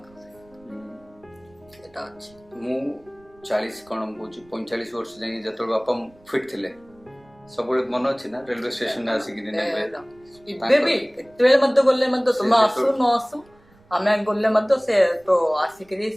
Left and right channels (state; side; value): noise; right; rumble, 29 dB below the sound